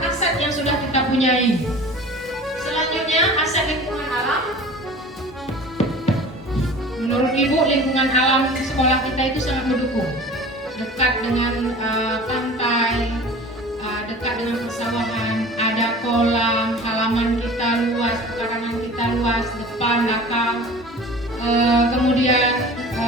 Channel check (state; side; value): normal; both; correlation 0.41